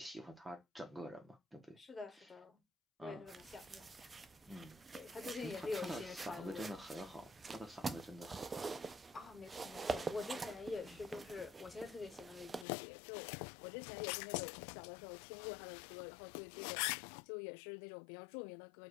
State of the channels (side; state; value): right; drops out; at 12.7 s